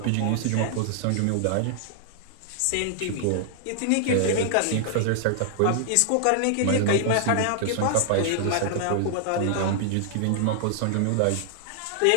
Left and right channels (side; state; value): both; different; correlation -0.01